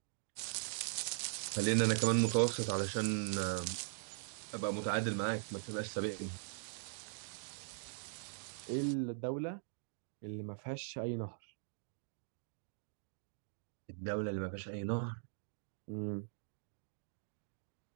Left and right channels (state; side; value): silent; left; digital silence